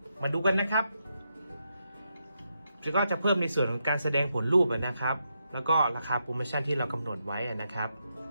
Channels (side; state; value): both; inverted; correlation -0.83